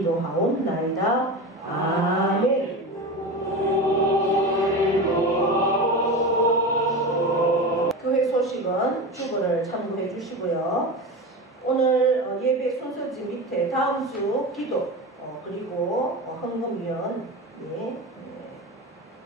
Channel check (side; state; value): both; normal; correlation 0.25